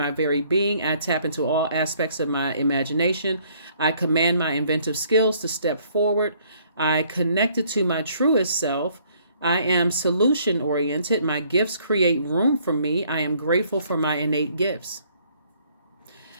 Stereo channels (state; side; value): inverted; both; correlation -0.64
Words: very being. I tap into all aspects of my imagination. I command my inventive skills to step forward. I connected to my truest self. I am solution oriented. My gifts create room for me. I am grateful for my innate gifts.